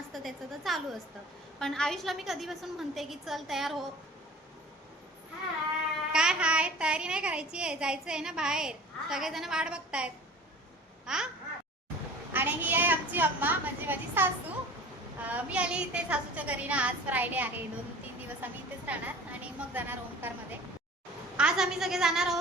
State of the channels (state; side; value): normal; both; correlation 0.42